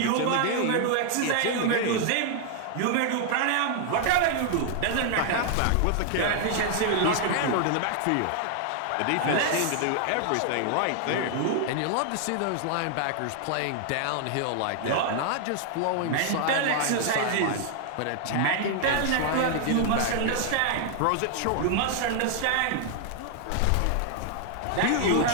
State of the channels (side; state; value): both; different; correlation 0.00